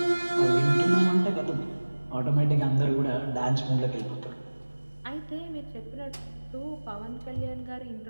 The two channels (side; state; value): both; inverted; correlation -1.00